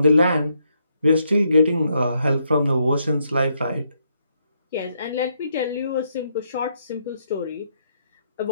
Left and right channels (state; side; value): inverted; both; correlation -0.76